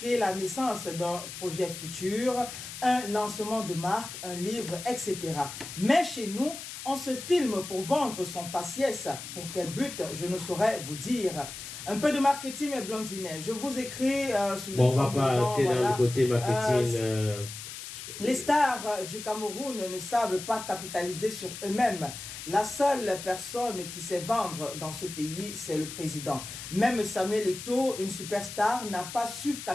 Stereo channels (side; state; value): left; noise; hiss, 10 dB below the sound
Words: la naissance d'un projet futur, un lancement de marque, un livre, etc. Mais chez nous, on se filme pour vendre son faciès. Pour quel but, je ne saurais vous dire. Un peu de marketing et blondinet. Je vous écris sous on va pas aller dans le côté marketing. Les stars du Cameroun ne savent pas capitaliser sur eux-mêmes. La seule personne qui sait vendre dans ce pays, c'est le président. Même Samuel Eto'o, une superstar, n'a pas su